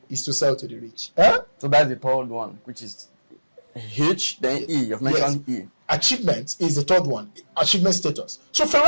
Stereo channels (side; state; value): both; inverted; correlation -1.00